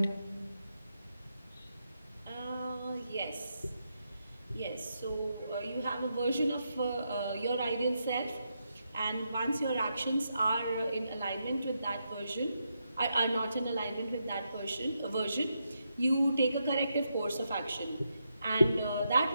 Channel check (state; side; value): inverted; both; correlation -0.83